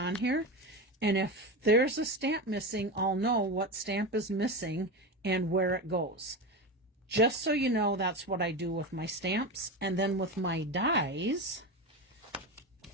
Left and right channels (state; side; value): normal; both; correlation 0.21